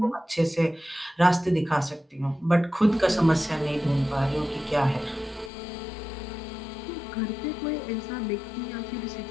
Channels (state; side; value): drops out; right; at 5.5 s